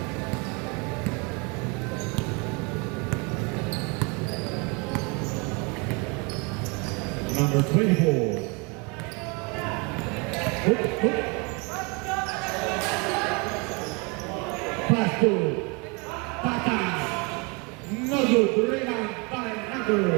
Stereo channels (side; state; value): left; quieter; 30.6 dB